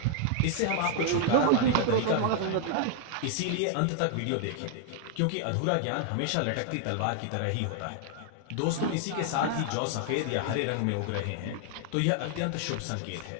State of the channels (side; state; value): both; different; correlation 0.00